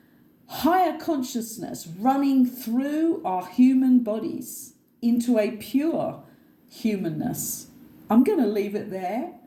higher consciousness running through our human bodies into a pure humanness. I'm going to leave it there.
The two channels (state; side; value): identical; both; correlation 1.00